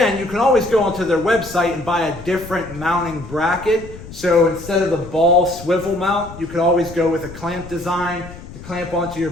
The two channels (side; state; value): left; noise; rumble, 15 dB below the sound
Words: you can always go onto their website and buy a different mounting bracket. So instead of the ball swivel mount, you could always go with a clamp design to clamp onto your